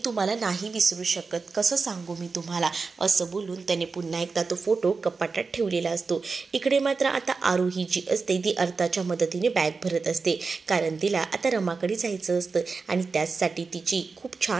तुम्हाला नाही विसरू शकत, कसं सांगू मी तुम्हाला, असं बोलून त्याने पुन्हा एकदा तो फोटो कपाटात ठेवलेला असतो. इकडे मात्र आता आरोही जी असते ती अर्थाच्या मदतीने बॅग भरत असते, कारण तिला आता रमाकडे जायचं असतं आणि त्याचसाठी तिची खूप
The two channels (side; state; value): left; quieter; 4.5 dB